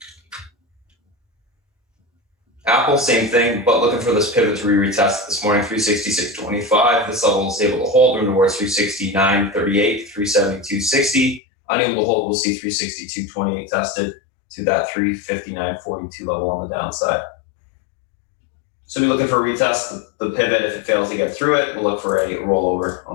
Apple, same thing, but looking for this pivot to retest this morning, 366.25. This level is able to hold, room towards 369.38, 372.60. Unable to hold, we'll see 362.28 tested to that 359.42 level on the downside. So we're looking for a retest, the pivot. If it fails to get through it, we'll look for a rollover on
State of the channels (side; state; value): right; drops out; at 11.4 s